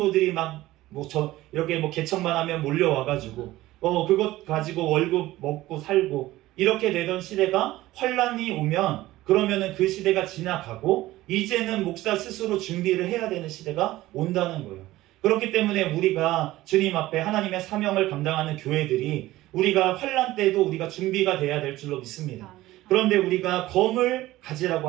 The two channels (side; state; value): left; quieter; 16.7 dB